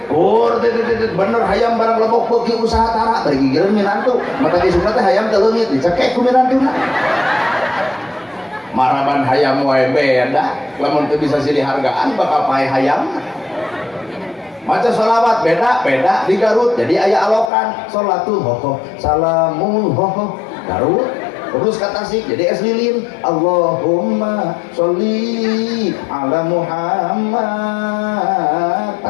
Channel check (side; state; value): right; drops out; at 17.5 s